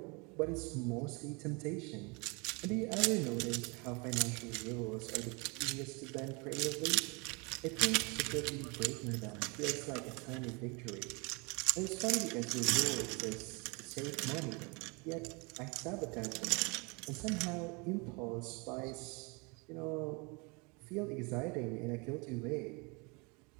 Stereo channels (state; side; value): quieter; left; 30.0 dB